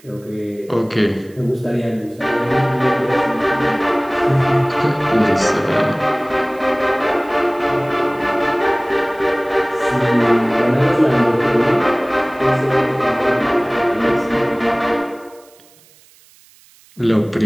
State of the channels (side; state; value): right; noise; hiss, 28 dB below the sound